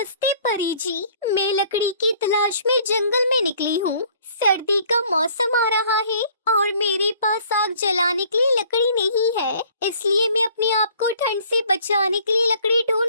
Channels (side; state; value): both; inverted; correlation -0.56